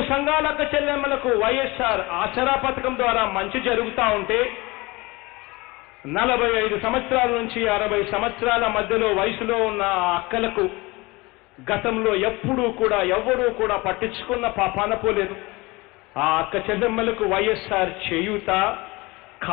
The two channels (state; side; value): quieter; right; 23.3 dB